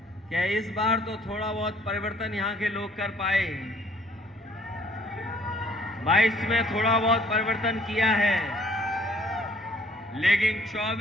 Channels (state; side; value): normal; both; correlation 0.60